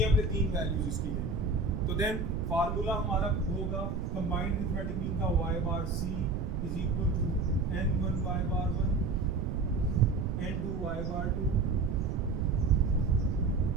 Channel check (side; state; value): right; noise; rumble, 2 dB below the sound